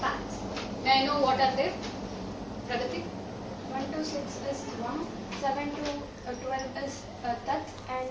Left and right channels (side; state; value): both; identical; correlation 1.00